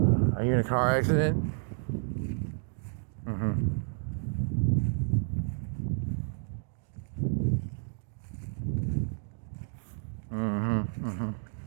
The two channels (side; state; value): left; silent; 57 dB below the other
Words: are you in a car accident?